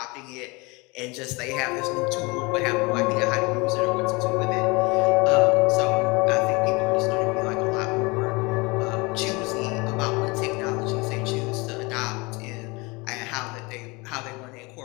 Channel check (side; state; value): right; quieter; 26.4 dB